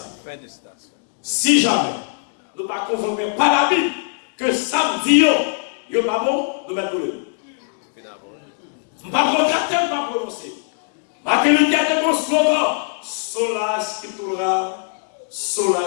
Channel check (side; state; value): right; silent; digital silence